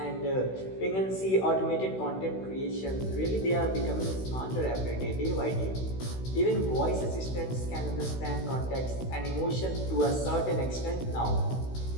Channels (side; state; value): right; late; 16 ms